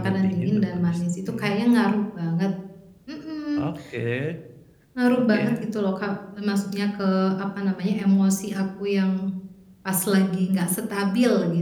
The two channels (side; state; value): both; identical; correlation 1.00